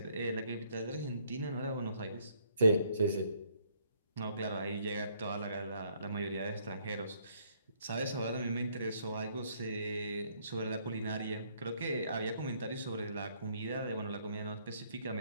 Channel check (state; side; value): inverted; both; correlation -0.67